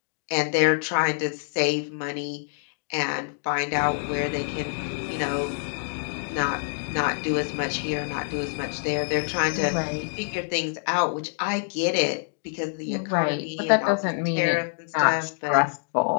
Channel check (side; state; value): right; silent; 61 dB below the other